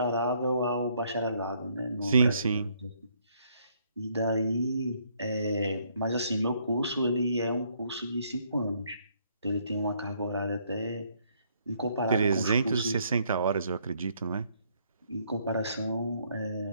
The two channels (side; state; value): both; inverted; correlation -0.68